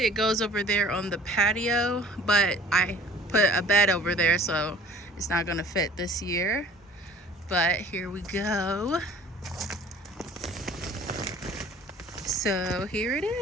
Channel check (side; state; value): both; normal; correlation 0.49